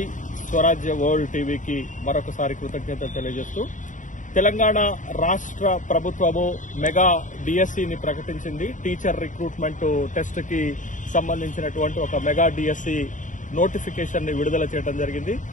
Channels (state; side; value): late; right; 0.37 ms